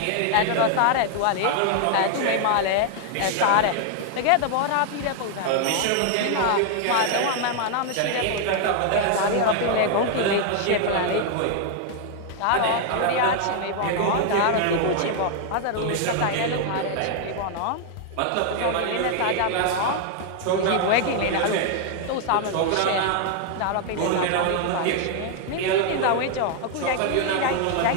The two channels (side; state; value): both; different; correlation 0.00